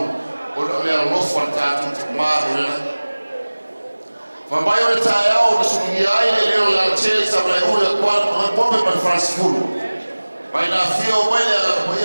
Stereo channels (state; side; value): inverted; both; correlation -1.00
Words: O le alofa tātu te maa o le. Whambai o le tae au na sungi ai le leo la tele sa mai ule kwa pope man Francis Fulu. Mai na fio mai le ala